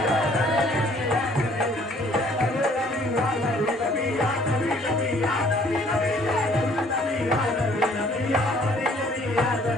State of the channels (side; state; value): both; normal; correlation 0.59